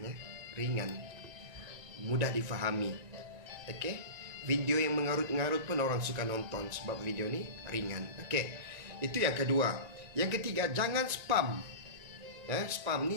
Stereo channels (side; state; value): left; late; 1.9 ms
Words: Ringan, mudah difahami. Okey, video yang mengarut-ngarut pun orang suka nonton. Sebab video ni ringan. Okey, itu yang kedua. Yang ketiga, jangan spam. Spam